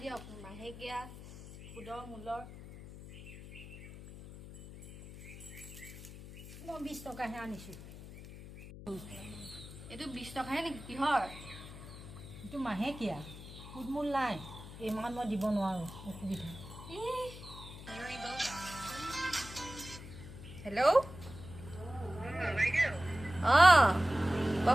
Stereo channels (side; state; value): left; noise; hum, 14 dB below the sound